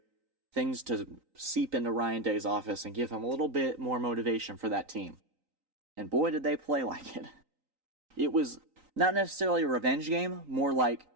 things to seep into Ryan Day's office and give him a little bit more motivation for that team. And boy, did they play like it. It was not necessarily a revenge game, more like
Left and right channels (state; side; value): late; left; 3.9 ms